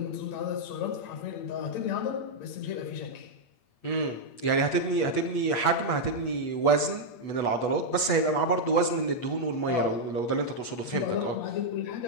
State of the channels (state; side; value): late; right; 8.2 ms